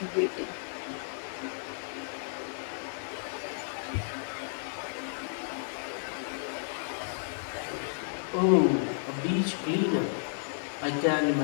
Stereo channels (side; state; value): right; silent; digital silence